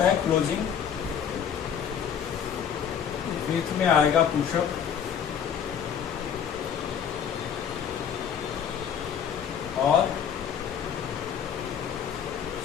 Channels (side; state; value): right; quieter; 8.2 dB